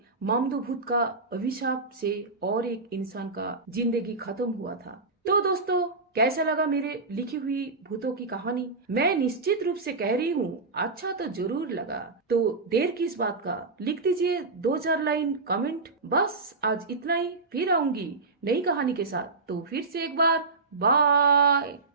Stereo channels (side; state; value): left; quieter; 3.8 dB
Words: मामदो भूत का अभिशाप से और एक इंसान का जिंदगी खत्म हुआ था। तो दोस्तों, कैसा लगा मेरे लिखी हुई भूतों की कहानी? मैं निश्चित रूप से कह रही हूँ अच्छा तो जरूर लगा। तो देर किस बात का, लिख दीजिए 2-4 लाइन कमेंट। बस आज इतना ही, फिर आऊंगी नई कहानी के साथ। तो फिर से एक बार बाय।